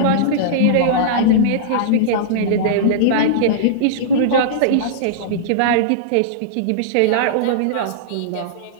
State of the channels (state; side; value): different; both; correlation -0.03